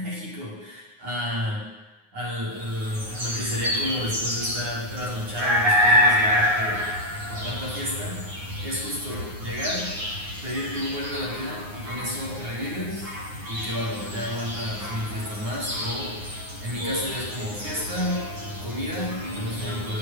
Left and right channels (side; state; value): left; late; 9.6 ms